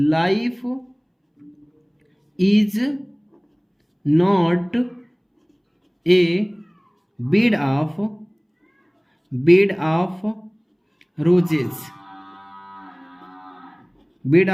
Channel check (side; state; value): both; identical; correlation 1.00